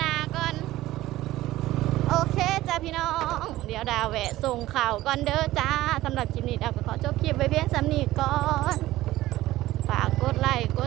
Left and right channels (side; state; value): left; quieter; 16.2 dB